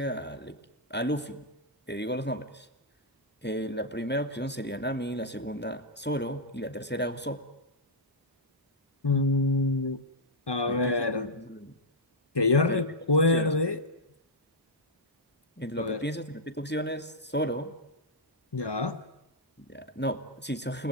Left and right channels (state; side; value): normal; both; correlation -0.06